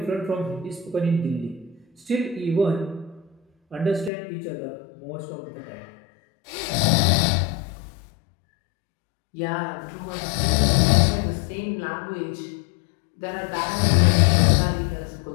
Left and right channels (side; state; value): right; drops out; at 4.1 s